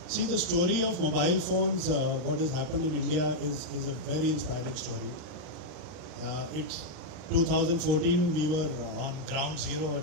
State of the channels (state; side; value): late; left; 39 ms